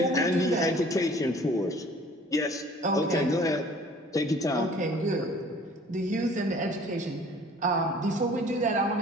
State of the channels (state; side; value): normal; both; correlation 0.51